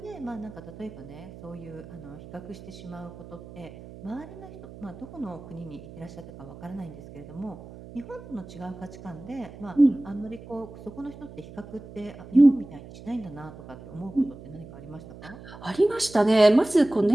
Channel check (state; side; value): noise; right; hum, 16 dB below the sound